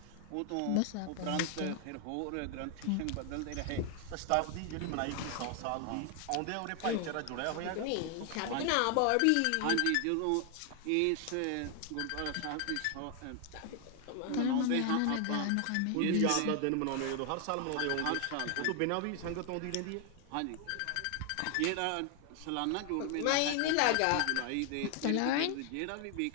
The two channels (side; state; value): both; different; correlation 0.00